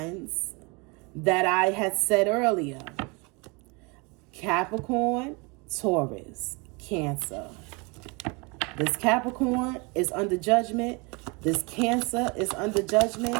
that I had said earlier. Capricorn, Taurus, Cancer. This Capricorn is under judgment. This Cancer is under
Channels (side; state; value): left; quieter; 29.2 dB